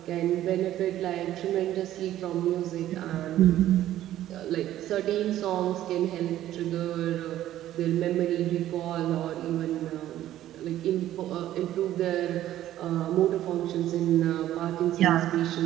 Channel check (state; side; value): quieter; left; 13.0 dB